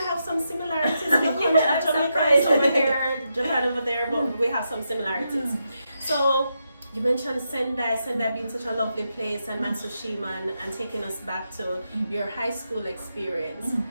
have some similarities. Yeah, I'm Jamaica is surprised. over here, Japan over there, but we have some similarities. So you mentioned Sendai being such a lovely place, and Matsushima, and taking us back to your high school experience.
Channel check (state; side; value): inverted; both; correlation -0.84